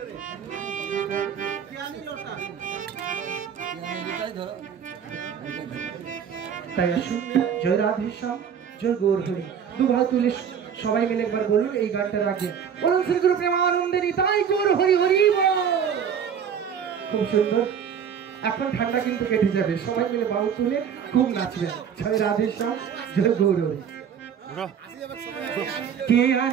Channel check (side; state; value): left; quieter; 7.8 dB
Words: তাই আসুন জয় রাধে শ্যাম জয় গৌর হরি দু ভাই তুলে সবাই মিলে একবার বলুন এই গানটার আগে বলুন শ্রী গুরু প্রেমানন্দেরই তাই গৌর হরি হরি খুব সুন্দর এখন ঠান্ডা কিন্তু কেটে যাবে সবাই মিলে বাহু তুলে খুব নাচবেন জয় রাধে শ্যাম জয় গৌর হরি কে